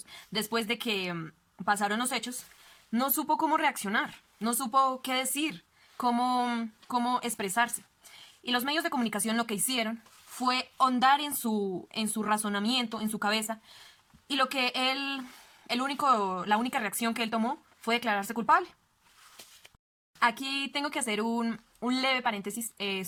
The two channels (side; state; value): both; identical; correlation 1.00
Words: después de que pasaron los hechos, no supo cómo reaccionar, no supo qué decir, cómo expresarse. Y los medios de comunicación lo que hicieron fue hondar en su razonamiento, en su cabeza, y lo que la única reacción que él tomó fue declararse culpable. Aquí tengo que hacer un leve paréntesis